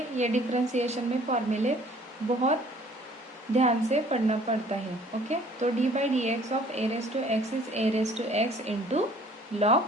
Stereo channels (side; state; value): both; normal; correlation 0.55